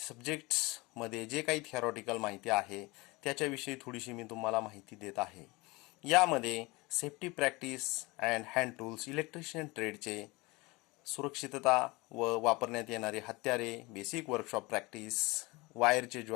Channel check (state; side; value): quieter; right; 23.8 dB